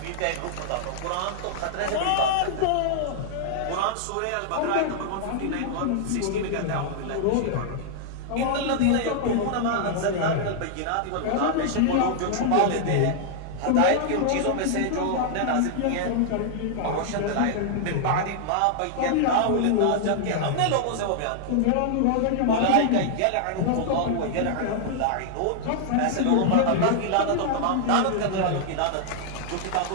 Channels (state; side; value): different; both; correlation -0.01